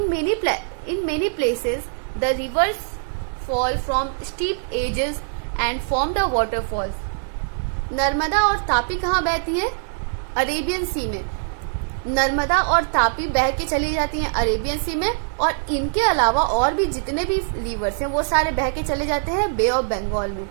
many places, the rivers fall from steep edges and form the waterfalls. Narmada और तापी कहाँ बहती है? अरेबियन सी में। नर्मदा और तापी बह के चली जाती हैं अरेबियन सी में, और इनके अलावा और भी जितने भी रिवर्स हैं वो सारे बह के चले जाते हैं बे ऑफ बंगाल में।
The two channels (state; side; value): silent; left; digital silence